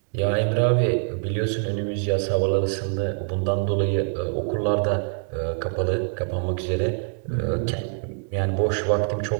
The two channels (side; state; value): left; silent; 56 dB below the other